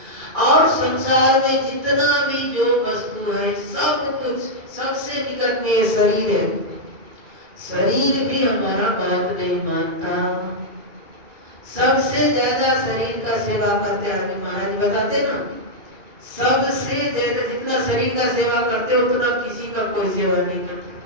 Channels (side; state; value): left; late; 2.2 ms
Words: और संसार में जितना भी जो वस्तु है, सब कुछ, सबसे निकट में ये शरीर है, शरीर भी हमारा बात नहीं मानता। सबसे ज्यादा शरीर का सेवा करते हैं महाराज बताते ना, सबसे ज्यादा जितना शरीर का सेवा करते उतना किसी का कोई सेवा नहीं